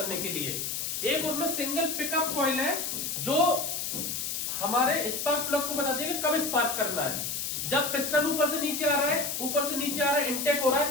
के लिए। एक उसमें सिंगल पिकअप कॉइल है जो हमारे स्पार्क प्लग को बताती है कि कब स्पार्क करना है। जब पिस्टन ऊपर से नीचे आ रहा है, ऊपर से नीचे आ रहा है, इनटेक हो रहा है,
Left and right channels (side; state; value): left; noise; hiss, 2 dB below the sound